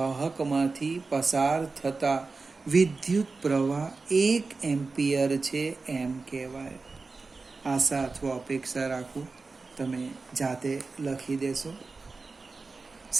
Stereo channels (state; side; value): quieter; left; 4.0 dB